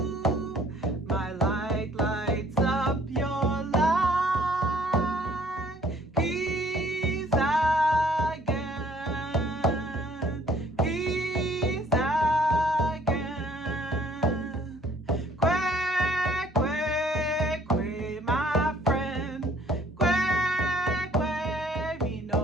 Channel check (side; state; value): both; normal; correlation 0.59